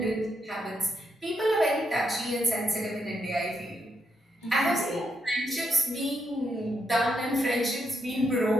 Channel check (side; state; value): both; normal; correlation 0.80